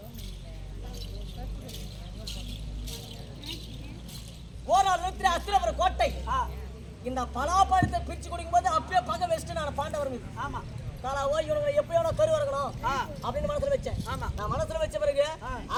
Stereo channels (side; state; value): both; identical; correlation 1.00